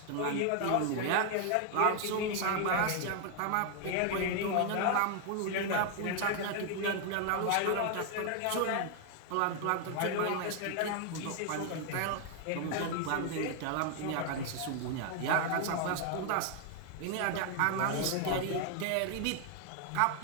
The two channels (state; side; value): different; both; correlation 0.00